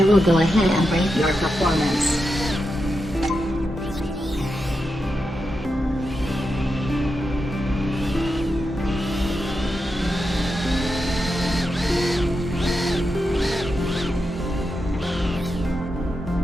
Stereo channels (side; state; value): both; normal; correlation 0.88